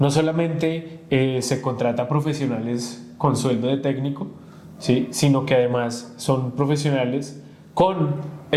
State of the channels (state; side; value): identical; both; correlation 1.00